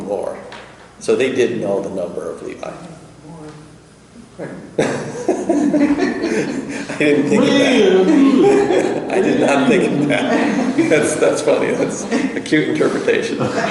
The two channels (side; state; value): both; identical; correlation 1.00